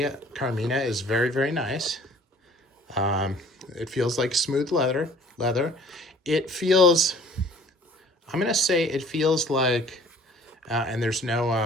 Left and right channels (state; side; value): normal; both; correlation 0.52